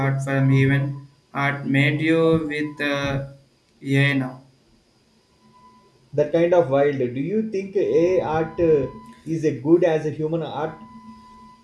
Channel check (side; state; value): both; identical; correlation 1.00